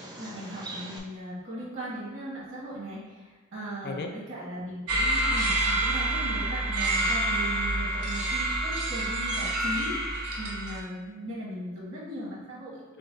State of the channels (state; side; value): normal; both; correlation 0.21